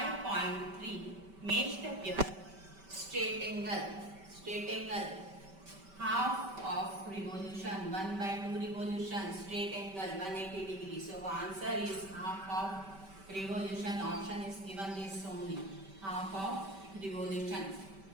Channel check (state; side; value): late; left; 5.2 ms